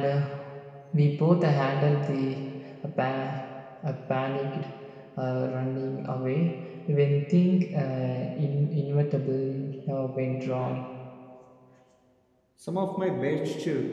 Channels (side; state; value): both; identical; correlation 1.00